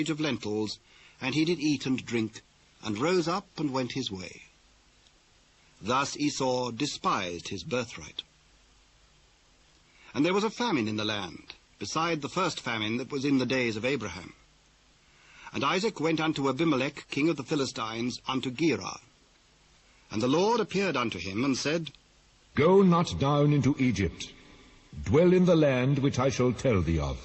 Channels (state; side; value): identical; both; correlation 1.00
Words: of lentils, and he did eat and drink, and rose up and went his way. Thus Esau despised his birthright. And there was a famine in the land, beside the first famine that was in the days of Abraham. And Isaac went unto Abimelech, king of the Philistines, unto Gerar. And the Lord appeared unto him, and said, Go not down into Egypt. Dwell in the land which I shall tell thee of.